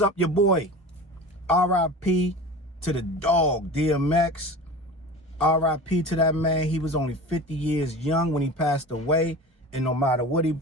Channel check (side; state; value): both; normal; correlation 0.34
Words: your boy? R.I.P. to the dog, DMX. R.I.P. to that man. He was only 50 years young when he passed away. And no matter what he